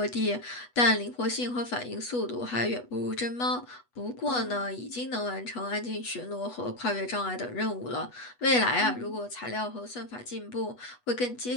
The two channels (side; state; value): right; late; 8.2 ms